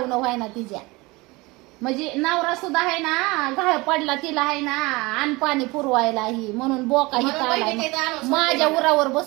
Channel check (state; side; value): quieter; left; 23.3 dB